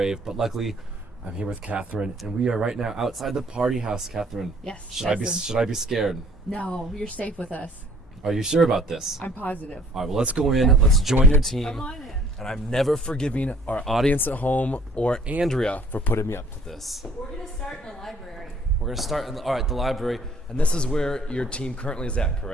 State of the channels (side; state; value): both; normal; correlation 0.57